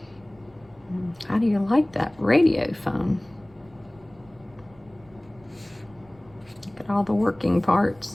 How do you like that radio phone? Look at all the working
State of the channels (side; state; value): right; noise; rumble, 28 dB below the sound